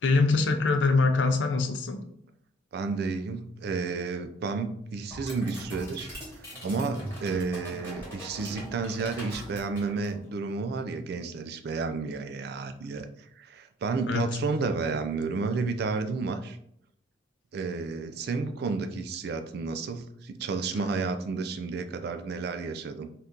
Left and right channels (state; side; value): normal; both; correlation 0.56